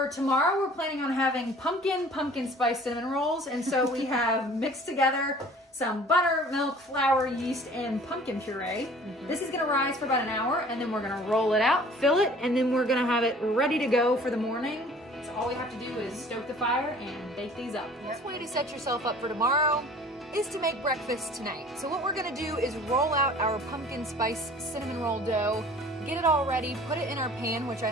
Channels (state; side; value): normal; both; correlation 0.49